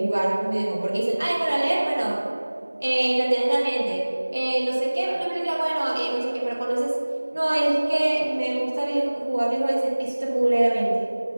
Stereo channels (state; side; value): inverted; both; correlation -1.00